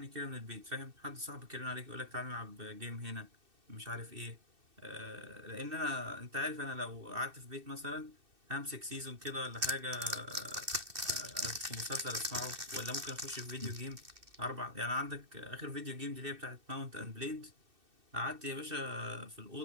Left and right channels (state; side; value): late; left; 2.6 ms